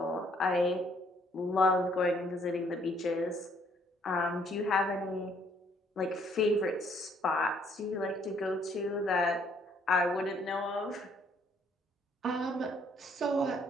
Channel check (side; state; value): both; normal; correlation 0.65